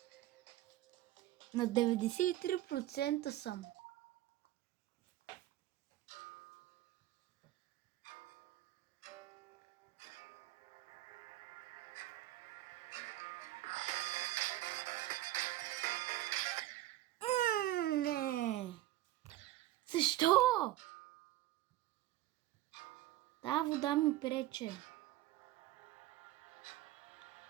На 93% съм. Не! Защо? Та вода ми прече.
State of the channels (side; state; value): left; quieter; 15.3 dB